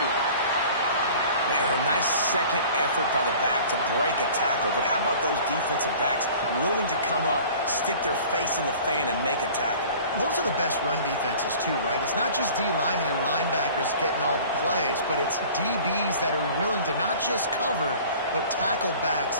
Man, a nice second effort by the back to break a tackle. But how about those defensive backs willing to come up, stick their face in the fan, and make a tackle? Those are the best run defenses, too, right? It's not just D linemen and linebackers getting all the plays, but it's DBs that are willing to not just cover, but tackle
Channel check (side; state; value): both; inverted; correlation -0.45